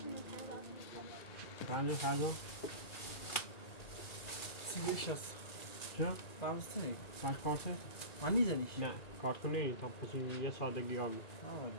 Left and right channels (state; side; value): late; right; 2.4 ms